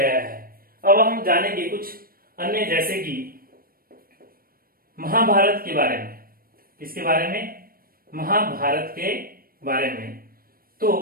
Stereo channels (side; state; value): left; late; 0.43 ms